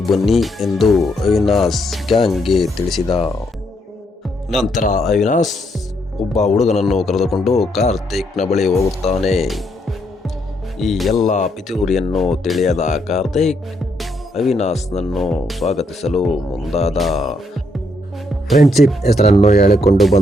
ಬನ್ನಿ ಎಂದು ಅವಿನಾಶ್ ಗ್ಯಾಂಗ್ಗೆ ತಿಳಿಸಿದ. ನಂತರ ಅವಿನಾಶ್ ಒಬ್ಬ ಹುಡುಗನನ್ನು ಕರೆದುಕೊಂಡು ಕಾರ್ತಿಕ್ನ ಬಳಿ ಹೋಗುತ್ತಾನೆ. ಈ ಎಲ್ಲ ಪಿತೂರಿಯನ್ನು ತಿಳಿಯದ ಕಾರ್ತಿಕ್ ಅವಿನಾಶ್ನನ್ನು ಸ್ವಾಗತಿಸಲು ಮುಂದಾದ. ಫ್ರೆಂಡ್ಶಿಪ್ ಹೆಸರನ್ನು ಹೇಳಿಕೊಂಡು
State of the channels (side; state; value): both; normal; correlation 0.75